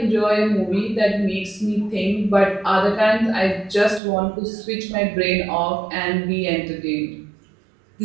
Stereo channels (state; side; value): drops out; left; at 4.0 s